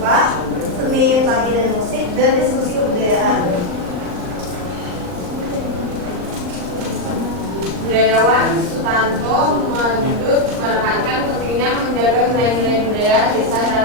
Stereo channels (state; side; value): late; left; 39 ms